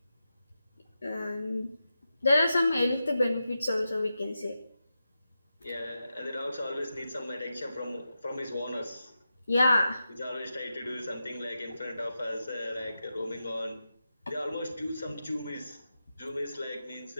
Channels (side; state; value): both; inverted; correlation -0.90